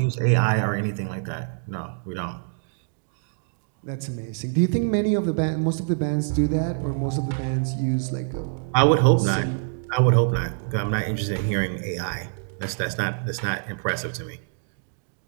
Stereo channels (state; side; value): silent; left; digital silence